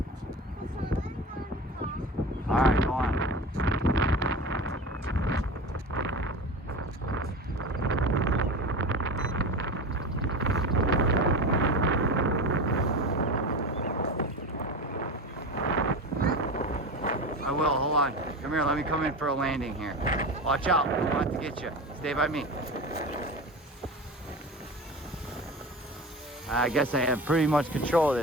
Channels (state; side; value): normal; both; correlation 0.29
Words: Alright, go on. I will, hold on. Come here, let me come in for a landing here. Watch out, I'm about to get you. Stay by me. I guess I have pretty much control of